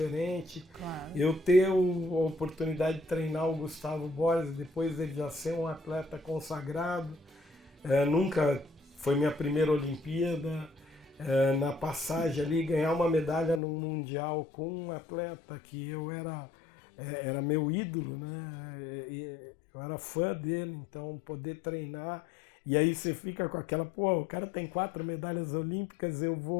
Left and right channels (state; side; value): drops out; right; at 13.6 s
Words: Claro. Eu ter a oportunidade de treinar o Gustavo Borges, depois dele já ser um atleta consagrado, nunca foi minha primeira Olimpíada, na passagem ali, ganhar uma medalha no Mundial com um atleta que eu era meu ídolo, né? Eu era fã dele, então poder treinar, e aí você fica com aquela, o cara tem 4 medalhas olímpicas, eu